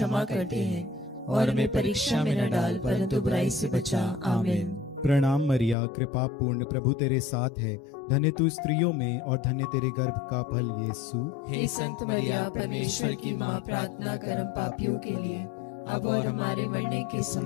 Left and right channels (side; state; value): right; drops out; at 5.8 s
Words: करते हैं, और हमें परीक्षा में न डाल परंतु बुराई से बचा। आमीन। प्रणाम मरिया, कृपा पूर्ण, प्रभु तेरे साथ है। धन्य तू स्त्रियों में और धन्य तेरे गर्भ का फल यीशु। हे संत मरिया, परमेश्वर की माँ, प्रार्थना कर हम पापियों के लिए अब और हमारे मरने के